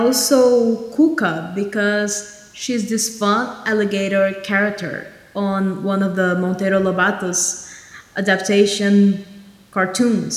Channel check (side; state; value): both; identical; correlation 1.00